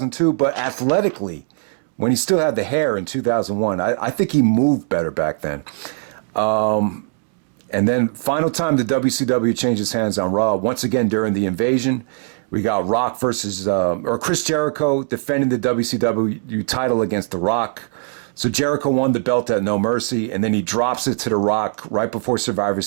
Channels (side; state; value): left; silent; 66 dB below the other